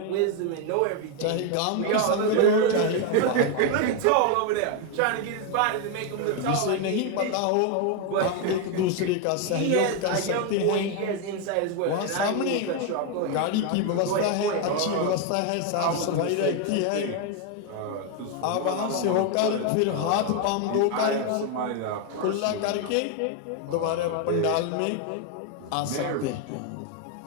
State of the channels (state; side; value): different; both; correlation 0.01